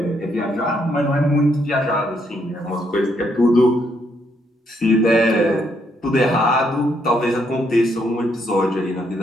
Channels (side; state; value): both; normal; correlation 0.74